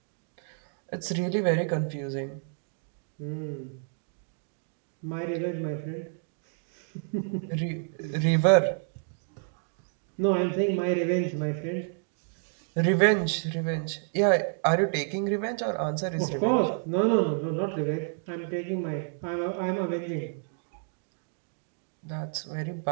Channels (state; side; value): silent; left; digital silence